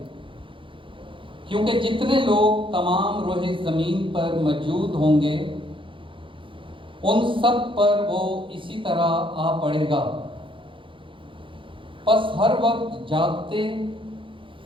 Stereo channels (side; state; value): left; late; 0.25 ms